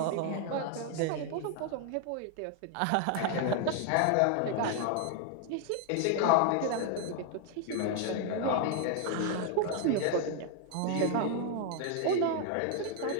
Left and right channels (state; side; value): different; both; correlation 0.00